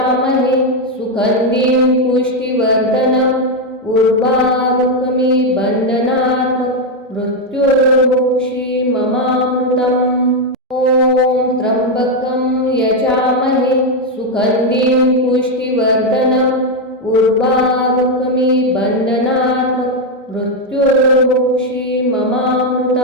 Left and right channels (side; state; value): both; normal; correlation 0.04